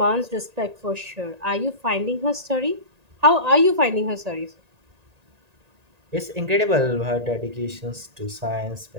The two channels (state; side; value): late; left; 1.8 ms